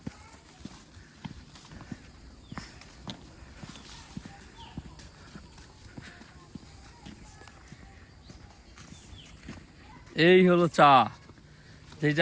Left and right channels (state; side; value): identical; both; correlation 1.00